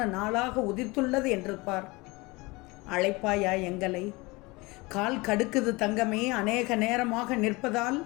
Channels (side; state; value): right; quieter; 24.2 dB